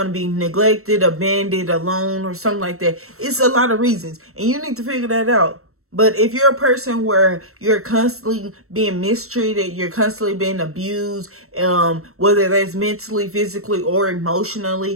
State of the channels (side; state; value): left; late; 0.63 ms